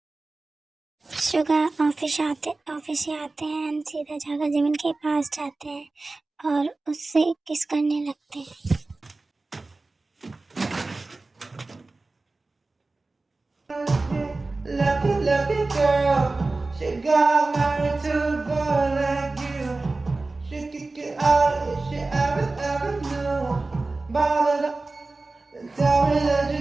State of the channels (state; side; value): quieter; left; 3.3 dB